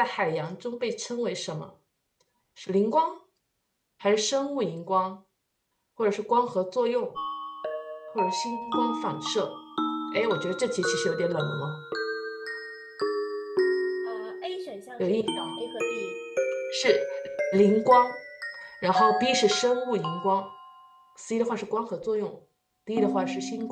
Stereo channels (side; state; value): both; identical; correlation 1.00